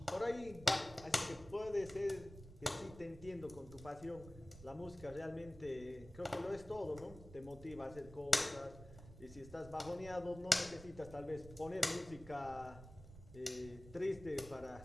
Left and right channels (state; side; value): noise; right; rumble, 16 dB below the sound